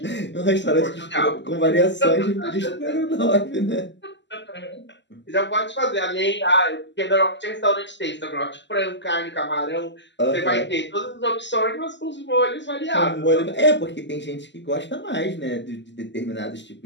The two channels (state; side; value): late; right; 0.52 ms